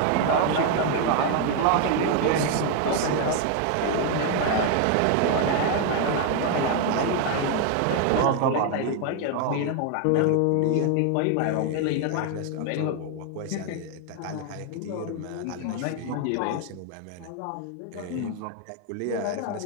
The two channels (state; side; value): different; both; correlation 0.01